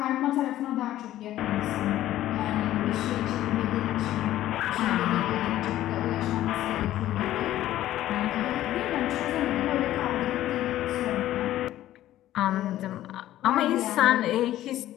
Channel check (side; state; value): right; quieter; 13.7 dB